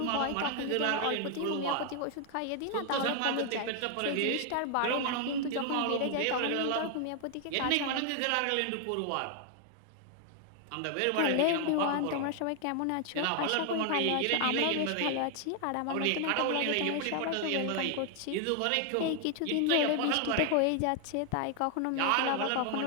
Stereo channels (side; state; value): both; different; correlation 0.00